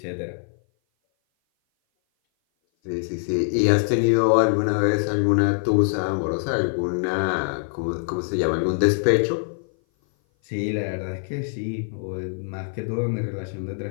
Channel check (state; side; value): silent; right; 57 dB below the other